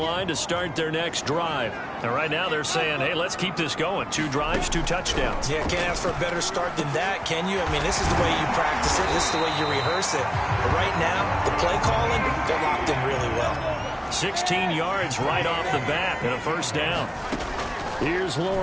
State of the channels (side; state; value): both; identical; correlation 1.00